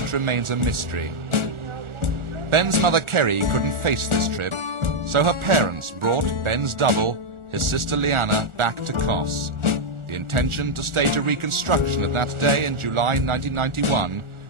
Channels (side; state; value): left; late; 1.4 ms